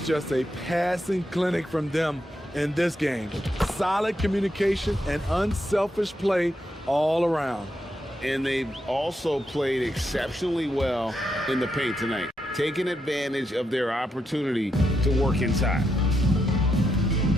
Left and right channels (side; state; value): both; normal; correlation 0.83